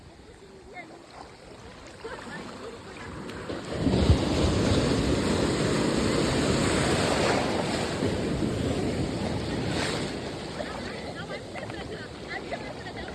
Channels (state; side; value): identical; both; correlation 1.00